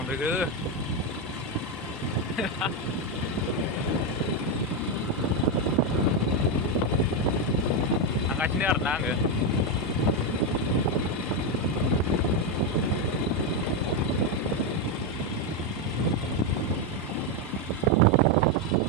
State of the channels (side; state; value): both; normal; correlation 0.06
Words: थांगासिनो आरोना आङो।